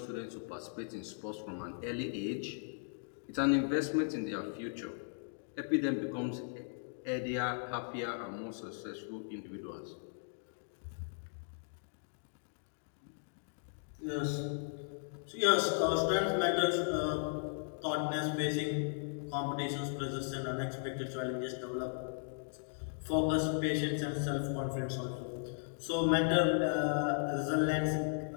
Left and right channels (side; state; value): right; silent; digital silence